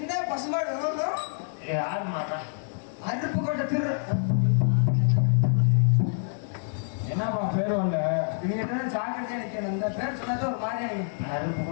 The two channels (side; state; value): right; silent; 60 dB below the other